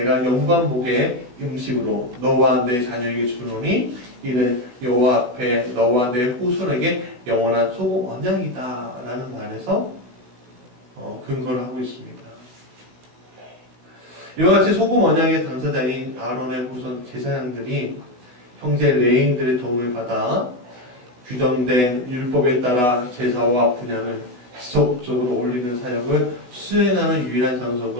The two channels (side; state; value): left; late; 16 ms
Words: 영광 복의 음식으로 너와 내 자녀에게 주노니 이는 여호와 앞에 너와 내 후손에게 영원한 소금 언약이다 라는 말에서 근거를 하고 있습니다. 이와 같이 소금 언약의 당사자인 아론의 후손 제사장들이 형제 레인들의 도움을 받아 규정된 율법에 따라 제사와 분향을 지속적으로 올리는 사역을 수행하는 유일한